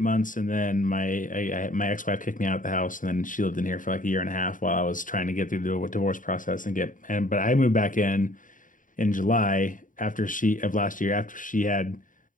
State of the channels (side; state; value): right; late; 0.38 ms